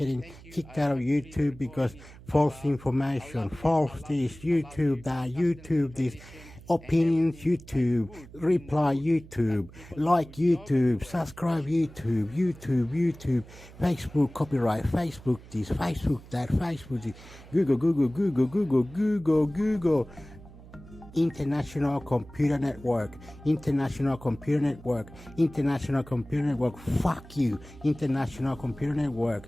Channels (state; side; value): noise; right; hum, 19 dB below the sound